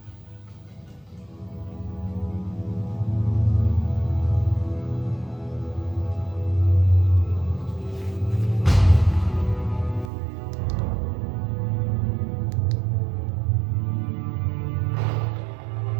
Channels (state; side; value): drops out; left; at 10.1 s